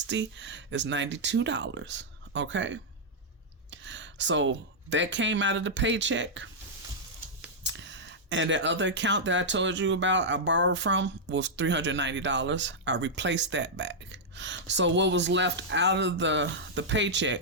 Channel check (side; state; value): both; normal; correlation -0.07